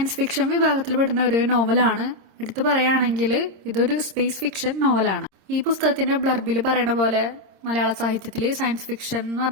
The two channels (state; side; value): late; left; 26 ms